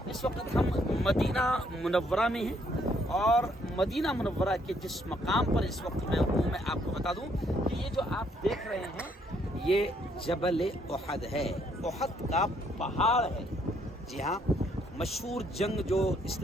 اس وقت ہم مدینہ منورہ میں ہیں اور مدینہ منورہ کے جس مقام پر اس وقت میں ہوں، میں آپ کو بتا دوں کہ یہ جو آپ دیکھ رہے ہیں یہ جبل احد ہے، احد کا پہاڑ ہے۔ جی ہاں، مشہور جنگ جو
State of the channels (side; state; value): both; normal; correlation 0.69